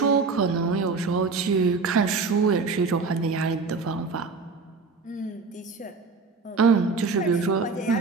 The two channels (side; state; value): left; quieter; 4.4 dB